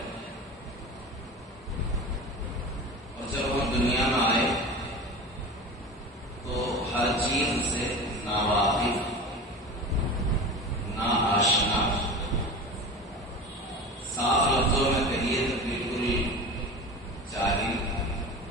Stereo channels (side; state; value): both; normal; correlation 0.32